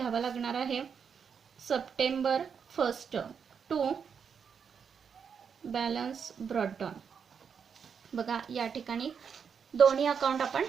लागणार आहे. September 1 to balance brought down. बघा, या ठिकाणी दोन्ही अकाउंट आपण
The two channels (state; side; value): quieter; left; 6.7 dB